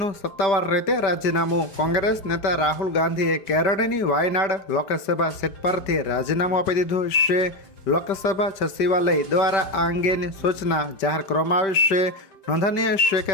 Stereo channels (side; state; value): right; late; 5.1 ms